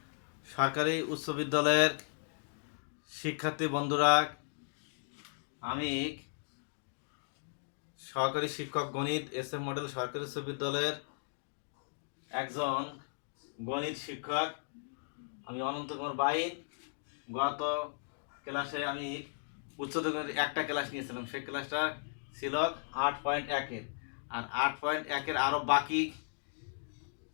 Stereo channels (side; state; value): right; silent; digital silence